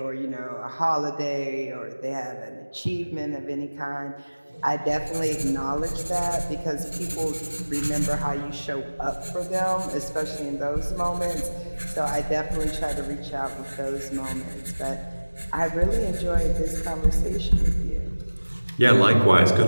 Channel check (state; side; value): inverted; both; correlation -1.00